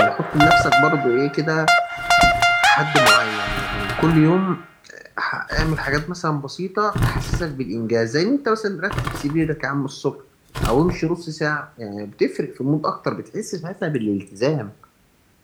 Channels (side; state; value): both; identical; correlation 1.00